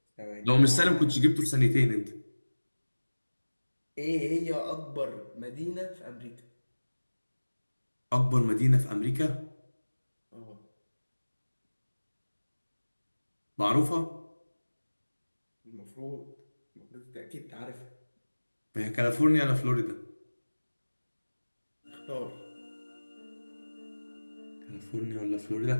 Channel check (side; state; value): both; inverted; correlation -1.00